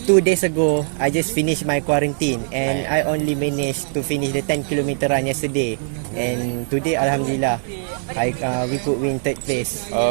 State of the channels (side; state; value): left; silent; digital silence